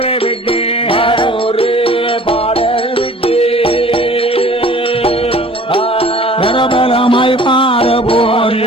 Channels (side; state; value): both; normal; correlation 0.48